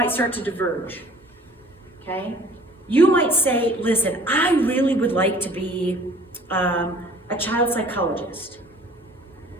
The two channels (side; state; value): both; normal; correlation 0.51